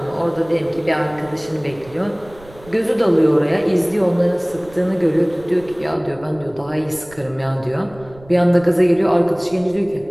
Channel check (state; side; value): noise; right; rumble, 22 dB below the sound